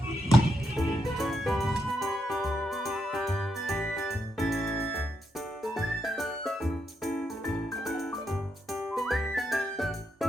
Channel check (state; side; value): normal; both; correlation 0.81